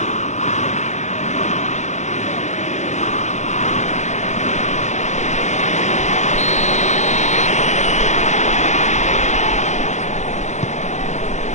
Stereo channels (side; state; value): right; late; 0.34 ms